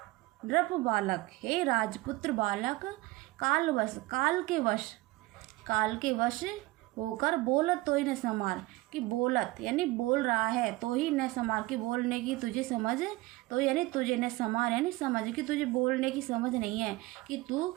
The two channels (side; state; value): left; quieter; 20.2 dB